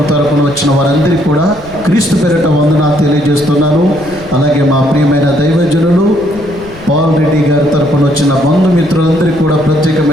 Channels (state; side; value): noise; left; rumble, 19 dB below the sound